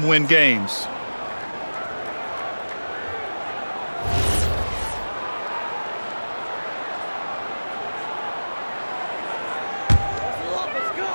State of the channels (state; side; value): inverted; both; correlation -1.00